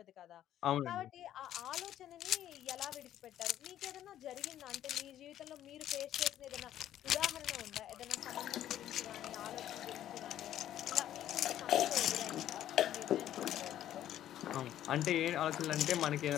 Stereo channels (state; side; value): quieter; right; 11.8 dB